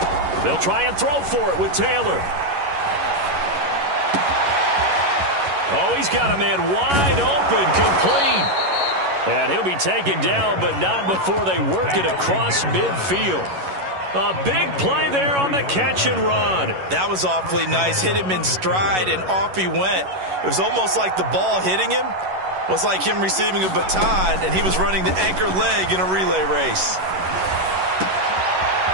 They'll try and throw for it with Taylor. Oh, he's got a man wide open, complete. And he'll be taken down, but not before they work it across midfield. A big play there on the catch and run. That was awfully nice. Hit him in stride, and off he went. It was almost like the ball hitting him was like him receiving a baton, and he was running the anchor leg in a relay race.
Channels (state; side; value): late; left; 11 ms